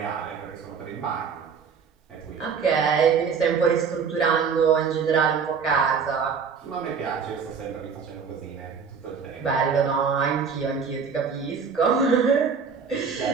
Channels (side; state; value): left; quieter; 6.1 dB